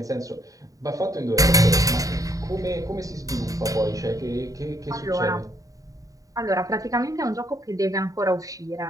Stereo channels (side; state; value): left; late; 0.17 ms